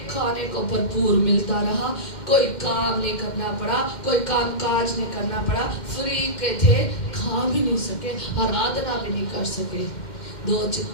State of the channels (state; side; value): late; right; 2.1 ms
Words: खाने को भरपूर मिलता रहा, कोई काम नहीं करना पड़ा, कोई काम काज नहीं करना पड़ा, फ्री के थे, खा भी नहीं सके, आराधना भी नहीं कर सके। दो